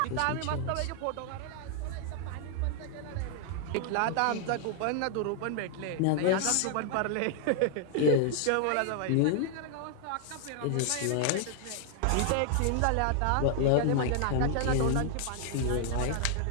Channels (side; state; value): both; different; correlation 0.00